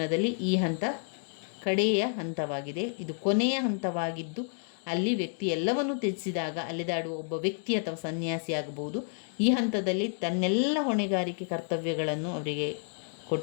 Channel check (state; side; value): silent; right; 58 dB below the other